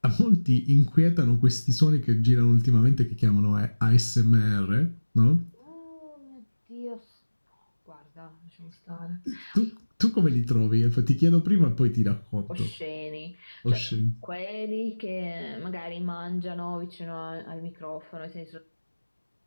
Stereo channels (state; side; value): inverted; both; correlation -1.00